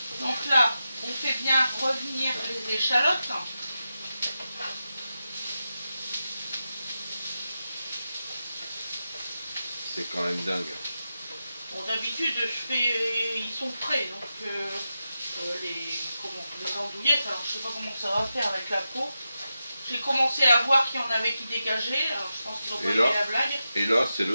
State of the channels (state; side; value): inverted; both; correlation -0.90